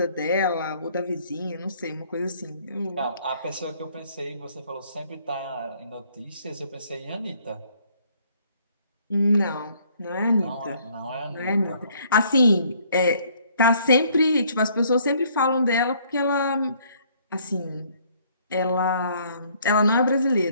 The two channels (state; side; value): inverted; both; correlation -0.63